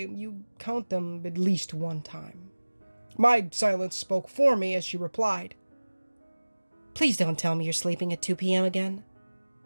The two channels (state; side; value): inverted; both; correlation -1.00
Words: you count them at least one time. My silence spoke for me as she replied, "Please don't tell me you're sleeping at 2 p.m. again."